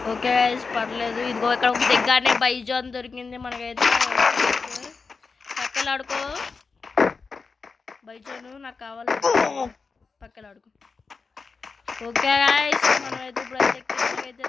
ఓకే గైస్ పర్లేదు. ఇదిగో ఇక్కడ ఒక దగ్గరనే బైజాన్ దొరికింది మనకైతే. పక్కలాడుకో బైజాను నాకు కావాలి. పక్కలాడుకో. ఓకే గైస్ మనమైతే ఇప్పుడైతే కిందకైతే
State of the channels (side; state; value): right; quieter; 4.6 dB